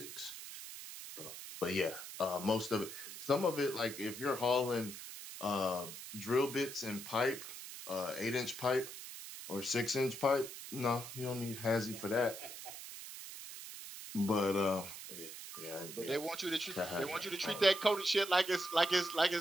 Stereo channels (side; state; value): right; noise; hiss, 11 dB below the sound